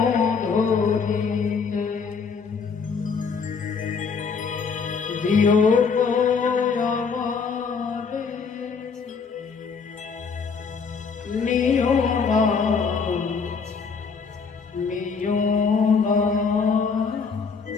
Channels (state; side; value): quieter; right; 5.4 dB